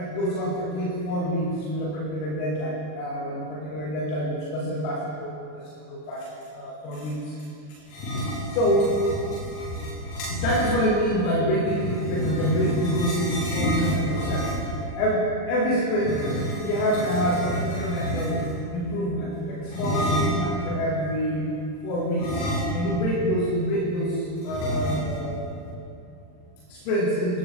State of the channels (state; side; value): late; right; 40 ms